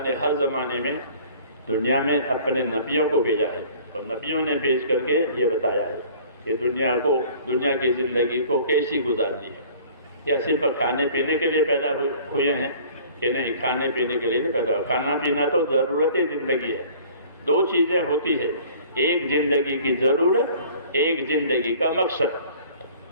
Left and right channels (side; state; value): both; inverted; correlation -0.49